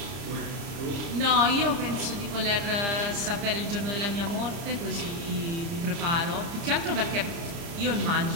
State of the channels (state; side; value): late; left; 30 ms